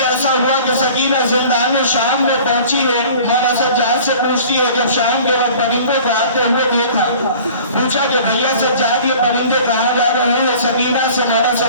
ایسا ہوا کہ سکینہ زندان شام میں پہنچی ہے، مولا سجاد سے پوچھتی ہے، جب شام کے وقت پرندوں کو آتے ہوئے دیکھا، پوچھا کہ بھیا سجاد یہ پرندے کہاں جا رہے ہیں؟ سکینہ سے مولا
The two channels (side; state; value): both; inverted; correlation -0.46